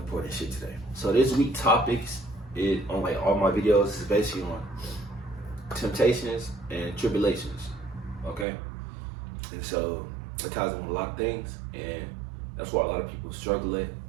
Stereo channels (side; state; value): left; drops out; at 8.5 s